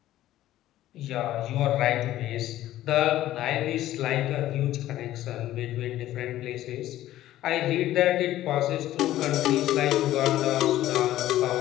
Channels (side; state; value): right; quieter; 14.1 dB